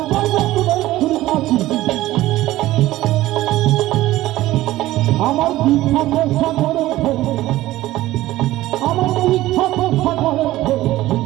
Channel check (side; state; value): left; quieter; 16.2 dB